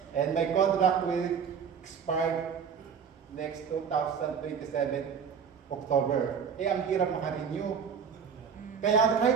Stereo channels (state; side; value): quieter; left; 6.8 dB